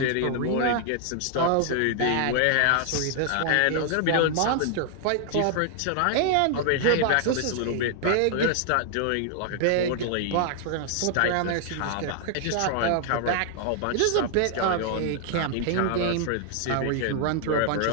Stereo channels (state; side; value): different; both; correlation 0.00